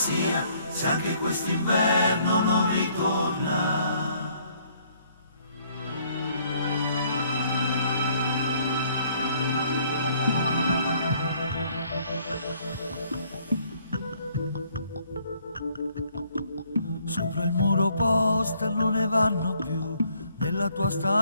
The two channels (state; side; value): inverted; both; correlation -0.64